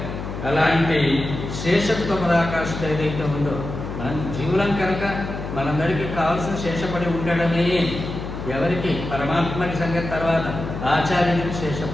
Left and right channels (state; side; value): noise; left; hum, 7 dB below the sound